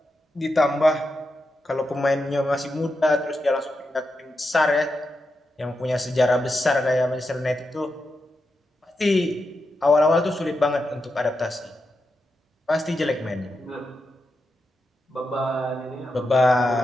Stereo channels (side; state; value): both; normal; correlation 0.87